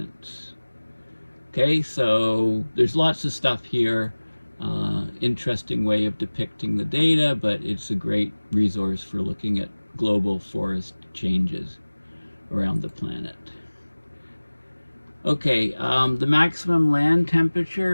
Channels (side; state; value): both; inverted; correlation -1.00